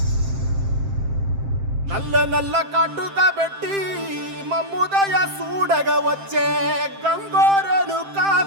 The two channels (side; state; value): left; late; 7.6 ms